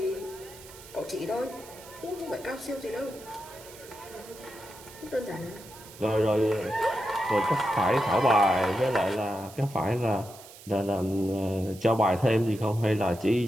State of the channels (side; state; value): right; noise; hiss, 19 dB below the sound